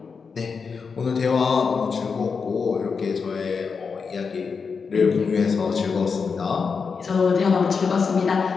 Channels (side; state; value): right; quieter; 5.4 dB